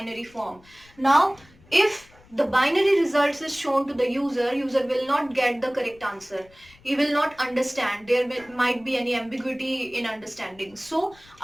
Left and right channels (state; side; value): noise; left; rumble, 27 dB below the sound